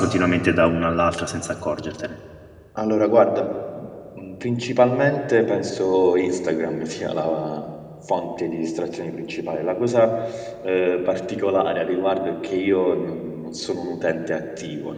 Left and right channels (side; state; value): both; identical; correlation 1.00